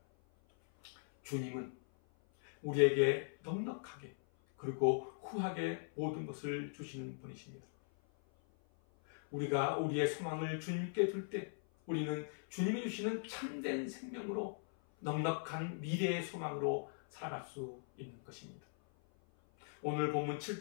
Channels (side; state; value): right; silent; 51 dB below the other